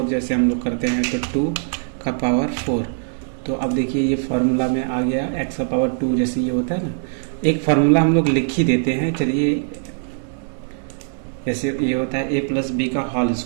जैसे हम लोग करते हैं, तो 2 का पावर 4। तो अब देखिए ये फार्मूला में आ गया, x का पावर 2 जैसे ये होता है ना, एक फार्मूला हम लोग लिख ही देते हैं। चलिए जैसे ये होता है a+b का होल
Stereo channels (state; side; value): silent; left; 61 dB below the other